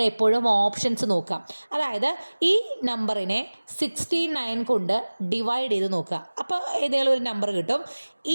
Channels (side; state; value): both; inverted; correlation -1.00